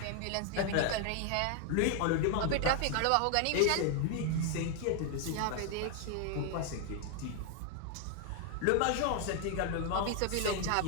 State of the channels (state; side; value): different; both; correlation 0.00